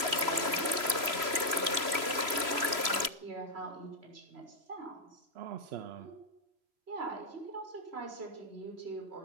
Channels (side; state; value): left; late; 3.0 ms